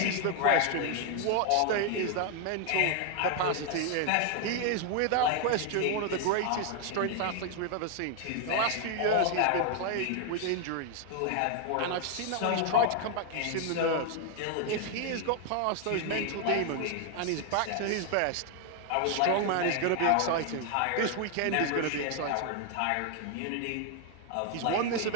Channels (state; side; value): different; both; correlation 0.00